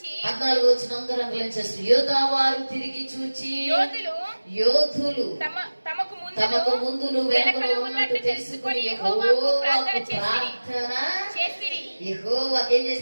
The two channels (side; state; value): both; inverted; correlation -1.00